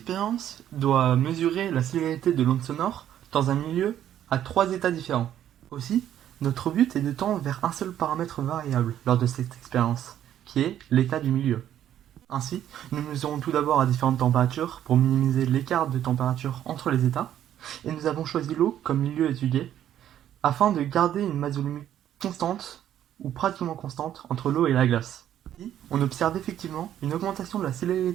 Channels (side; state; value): left; quieter; 11.0 dB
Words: doit mesurer la célérité de l'onde sonore dans un milieu à 3 états différents. Aussi, notre but est de tendre vers un seul paramètre variable lors de cette expérience, qui est l'état du milieu. Ainsi, nous mesurons tout d'abord à différentes températures pour minimiser l'écart de température entre les états, et nous avons choisi l'eau comme milieu étudié, afin de garder une masse volumique constante, ou pratiquement constante, entre l'eau et la glace. Ici, on observe effectivement une augmentation de la